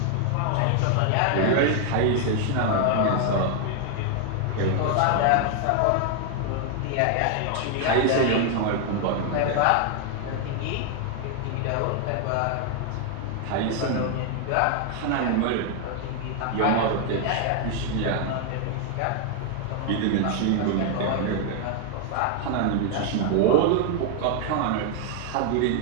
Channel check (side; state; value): both; different; correlation 0.00